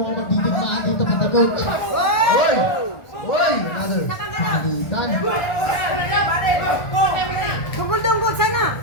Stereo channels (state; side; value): late; right; 1.4 ms